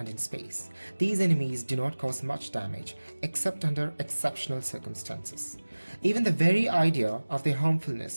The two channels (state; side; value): inverted; both; correlation -1.00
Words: in space, these enemies do not cause much damage except under exceptional circumstances. Even the very idea of their